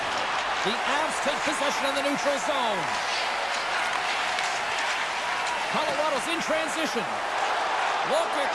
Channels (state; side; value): identical; both; correlation 1.00